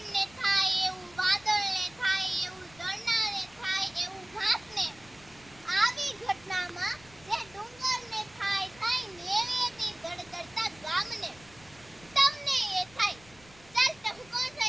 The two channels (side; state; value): left; noise; rumble, 24 dB below the sound